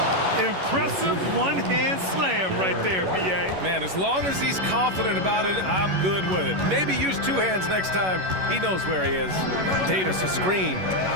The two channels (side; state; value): left; late; 11 ms